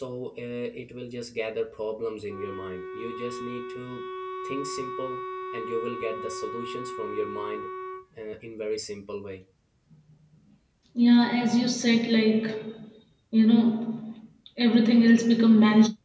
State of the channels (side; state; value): both; identical; correlation 1.00